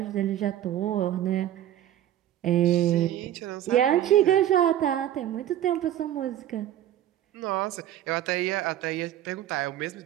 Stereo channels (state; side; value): quieter; left; 12.0 dB